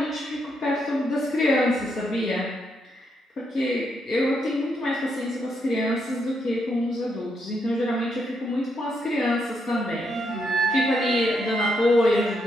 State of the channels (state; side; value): normal; both; correlation 0.79